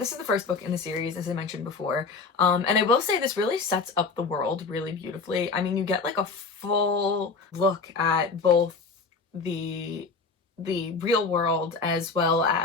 is the first book in the series, as I mentioned before. And I will say this really sets up the world really beautifully. I mean, you get like a full look at both the real world as well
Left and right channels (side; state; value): right; quieter; 4.5 dB